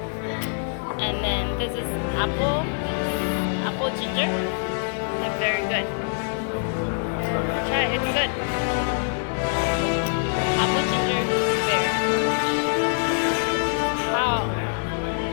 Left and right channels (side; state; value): right; silent; 62 dB below the other